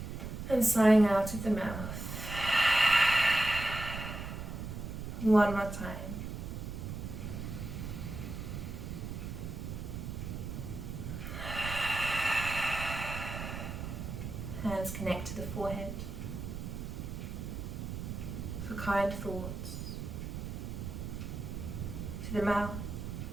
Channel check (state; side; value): noise; right; rumble, 6 dB below the sound